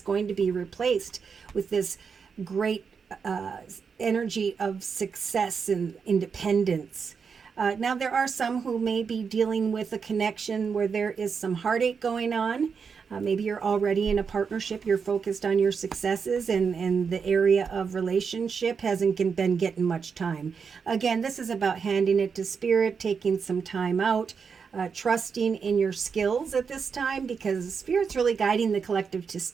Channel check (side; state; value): left; quieter; 5.9 dB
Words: going to be replaced with this great energy of success and independence. Now, there are some who may be dealing with a connection where there is some heartache going on. Maybe you're already in a partnership, you're focused on your successes, and the area of relationship hasn't been getting much time. Again, this is about handing it to Spirit, taking some time out, trusting in your skills at this time, because Spirit's really guiding the collective to